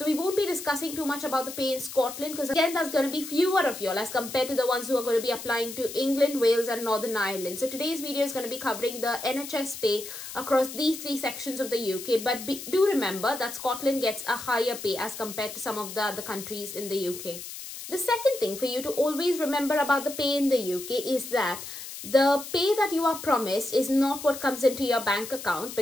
we won't be discussing too much about the pay in Scotland because again, there's going to be fewer of y'all as compared to the ones who are going to be applying to England, Wales and Northern Ireland. So today's video is going to be covering the NHS pay across these 3 sections of the UK. But do remember that Scotland gets a higher pay as compared to some of the other countries in the UK. The second thing for you to always remember about the pay in the UK is that the pay that you are promised is not what comes into your bank account,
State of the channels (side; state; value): left; noise; hiss, 10 dB below the sound